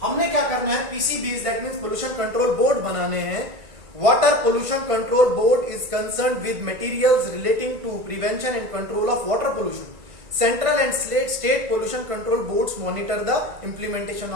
हमने क्या करना है? PCB that means pollution control board बनाने हैं। Water pollution control board is concerned with materials relating to prevention and control of water pollution. Central and state pollution control boards monitor the implementation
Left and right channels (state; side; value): late; left; 1.9 ms